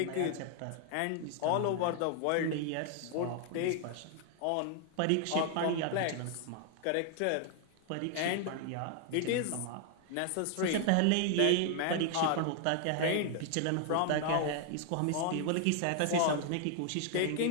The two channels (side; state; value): both; different; correlation 0.00